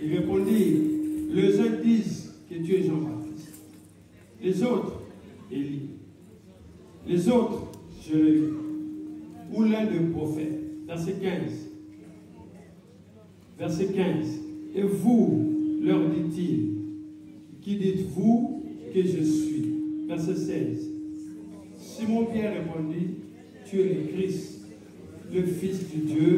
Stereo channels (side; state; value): both; identical; correlation 1.00